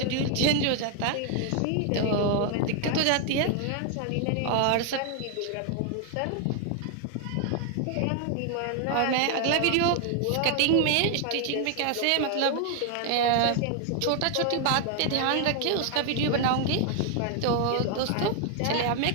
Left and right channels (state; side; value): different; both; correlation 0.00